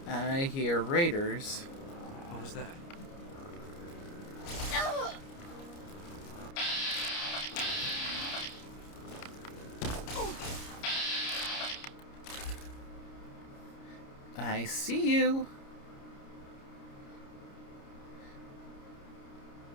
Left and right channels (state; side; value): late; right; 29 ms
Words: I hear raiders. What was that? I see you.